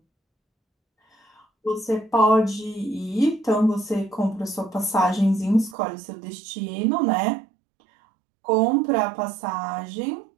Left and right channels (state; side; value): drops out; left; at 5.8 s